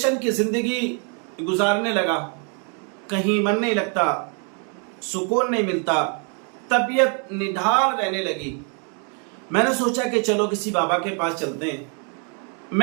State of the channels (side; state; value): left; quieter; 39.8 dB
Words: की ज़िंदगी गुजारने लगा, कहीं मन नहीं लगता, सुकून नहीं मिलता, तबीयत निढाल रहने लगी। मैंने सोचा कि चलो किसी बाबा के पास चलते हैं।